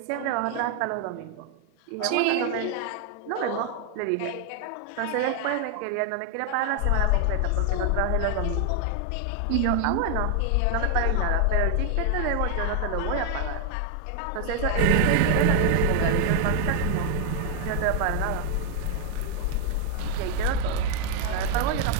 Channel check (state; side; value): different; both; correlation 0.00